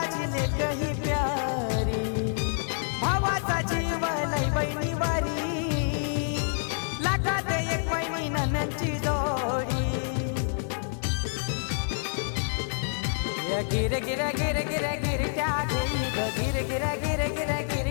लेक ही प्यारी भावाचा जीव लय बहिणी वारी लाखात एक बहिणी ननंची जोडी या गिर गिर गिर गिर गिरट्या घेई ग गिर गिर गिर गिर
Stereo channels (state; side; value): silent; right; 59 dB below the other